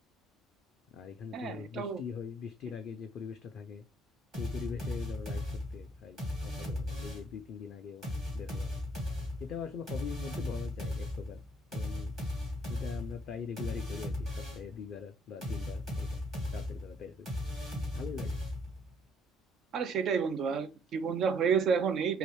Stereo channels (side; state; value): both; normal; correlation 0.64